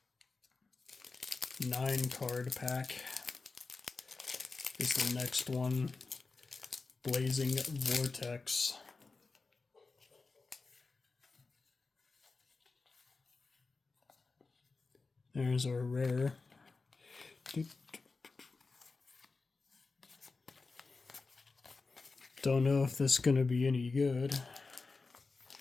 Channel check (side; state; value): right; quieter; 4.0 dB